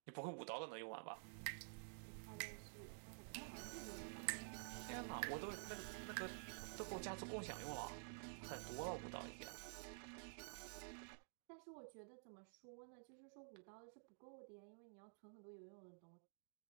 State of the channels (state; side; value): silent; left; digital silence